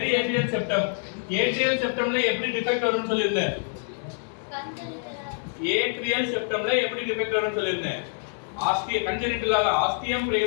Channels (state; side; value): silent; right; digital silence